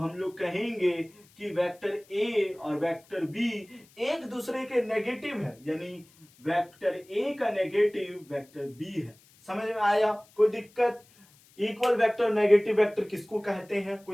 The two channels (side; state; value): left; noise; hiss, 28 dB below the sound